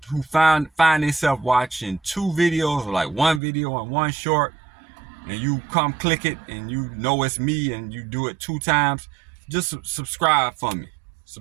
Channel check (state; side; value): drops out; left; at 3.4 s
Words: who find themselves watching two videos, or like one video and one short, and you come click it and you know it's me and you do it two times, just subscribe for me.